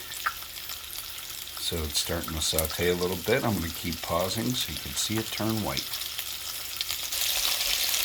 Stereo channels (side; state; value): both; identical; correlation 1.00